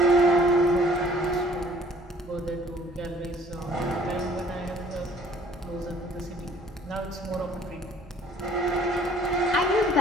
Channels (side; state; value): both; normal; correlation 0.55